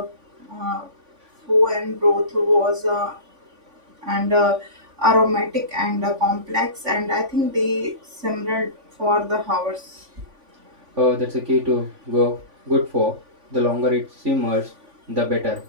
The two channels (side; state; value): left; late; 3.5 ms